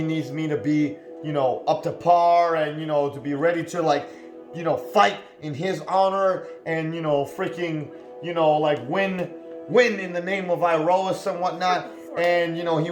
needs me to be, up to par, and, to be ready to, like, fight in his honor, and, freaking, like, win in the name of Iroas and whatnot. And, he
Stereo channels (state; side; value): identical; both; correlation 1.00